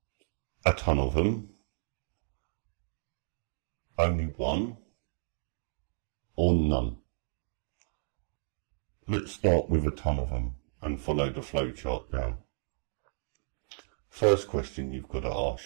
A ton of them? Only one? Or none? Let's start with a ton of them and follow the flowchart down. First question you've got to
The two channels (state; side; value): silent; left; digital silence